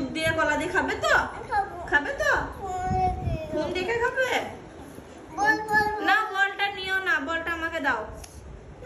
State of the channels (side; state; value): both; identical; correlation 1.00